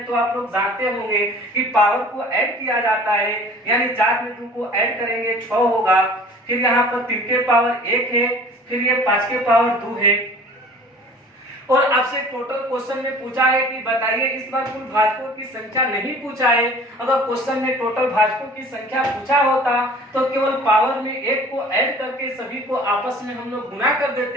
तो आप लोग जानते होंगे कि पावर को ऐड किया जाता है, यानी 4 में 2 को ऐड करेंगे 6 होगा। फिर यहाँ पर 3 के पावर 1 है, फिर ये 5 के पावर 2 है। और आपसे टोटल क्वेश्चन में पूछा है कि बताइए, इस बार कुल भाजकों की संख्या नहीं पूछा है। अगर क्वेश्चन में टोटल भाजकों की संख्या पूछा होता तो केवल पावर में 1 को ऐड करके सभी को आपस में हम लोग गुना कर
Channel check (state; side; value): normal; both; correlation 0.46